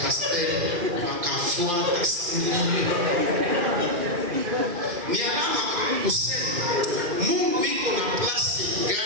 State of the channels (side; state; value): left; late; 2.2 ms